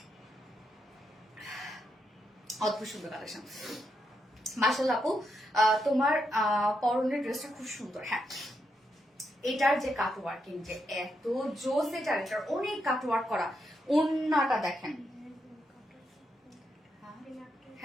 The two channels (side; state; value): both; normal; correlation 0.81